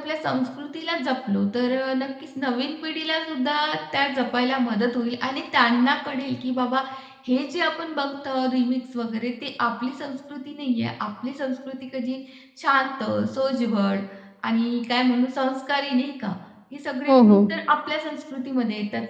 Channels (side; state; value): both; identical; correlation 1.00